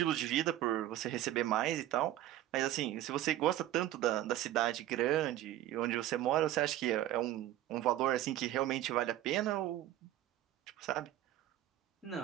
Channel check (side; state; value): left; quieter; 13.7 dB